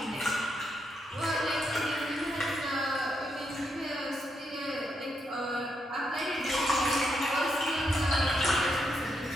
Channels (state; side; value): normal; both; correlation 0.81